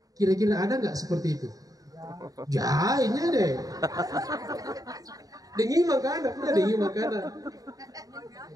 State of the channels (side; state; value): left; late; 0.18 ms